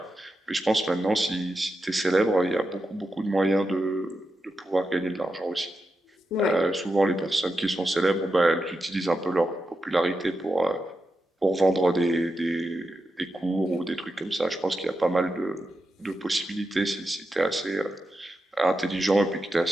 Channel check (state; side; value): normal; both; correlation 0.88